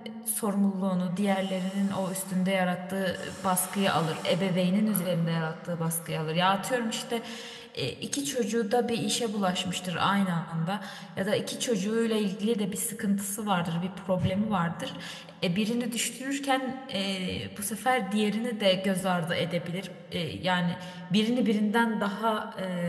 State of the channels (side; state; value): both; identical; correlation 1.00